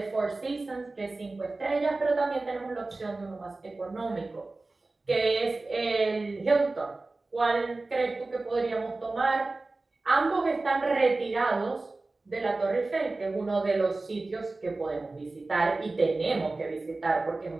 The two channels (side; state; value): left; quieter; 3.3 dB